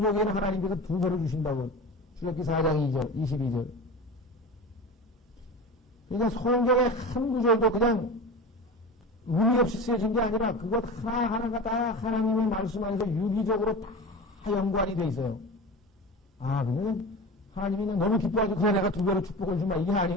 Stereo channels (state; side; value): normal; both; correlation 0.30